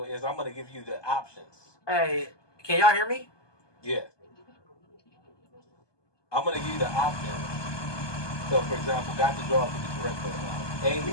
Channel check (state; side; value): late; right; 1.2 ms